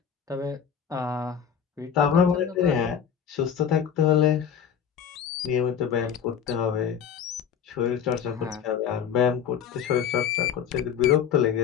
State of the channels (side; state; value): right; quieter; 8.0 dB